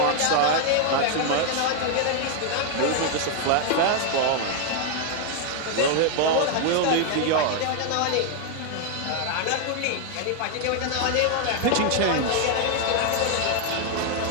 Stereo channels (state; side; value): different; both; correlation 0.01